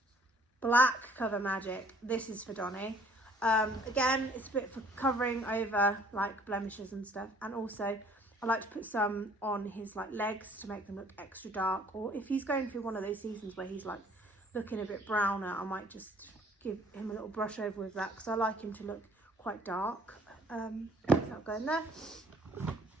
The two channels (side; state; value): both; normal; correlation 0.57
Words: Black Cover Magic. This is for Donny. Again, it's a bit for covering over like blemishes and stuff, and also I like to put some on his like legs to make them look extra dark, or if he's going through one of those seasons where he's like looking a bit browner, I might just give him a little brush over with that because I like him to look quite dark. That'll go in there.